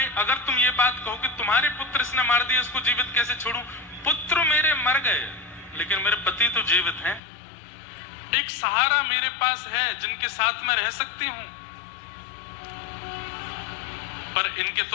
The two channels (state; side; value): drops out; right; at 7.2 s